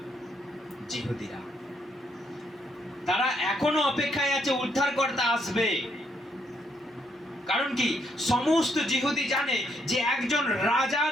জিহুদীরা। তারা এখনো অপেক্ষায় আছে উদ্ধারকর্তা আসবে। কারণ কি? সমস্ত জিহুদি জানে যে একজন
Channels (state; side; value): normal; both; correlation 0.74